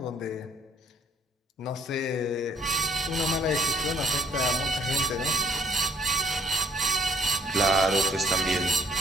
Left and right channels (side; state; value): both; normal; correlation 0.63